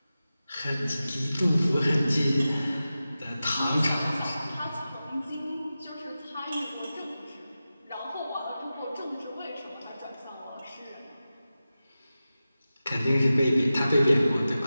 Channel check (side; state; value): both; inverted; correlation -0.94